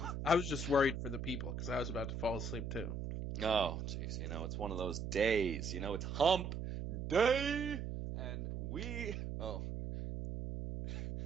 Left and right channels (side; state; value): right; noise; hum, 4 dB below the sound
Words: I was just worried for the people because I was about to fall asleep too. Oh, jeez, it's one of those days. It's hump day, and